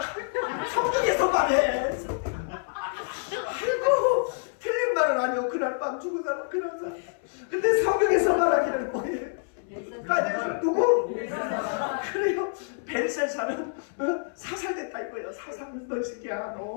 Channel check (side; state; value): right; silent; 60 dB below the other